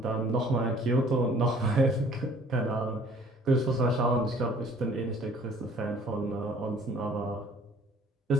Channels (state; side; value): normal; both; correlation 0.55